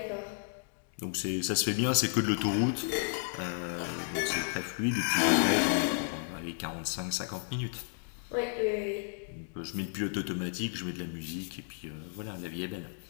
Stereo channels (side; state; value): right; silent; digital silence